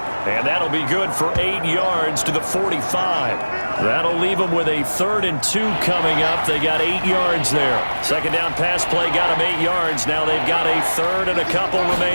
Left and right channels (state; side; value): inverted; both; correlation -1.00